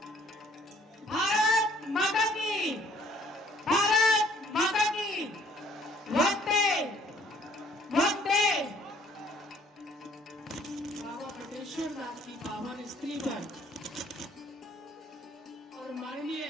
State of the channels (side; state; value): both; normal; correlation 0.60